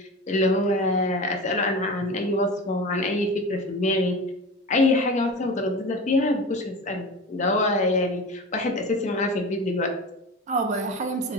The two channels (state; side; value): normal; both; correlation 0.30